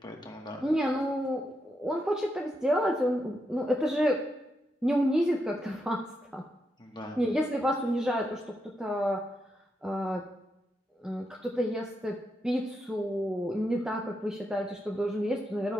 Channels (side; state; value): both; normal; correlation 0.83